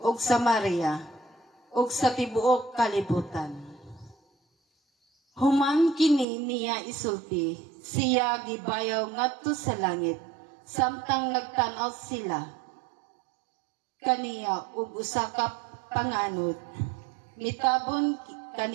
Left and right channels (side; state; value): left; drops out; at 6.2 s